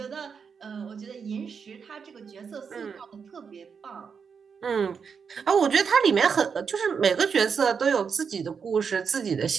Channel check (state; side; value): quieter; left; 6.2 dB